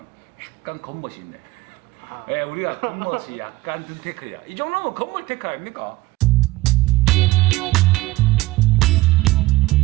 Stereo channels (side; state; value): left; quieter; 19.1 dB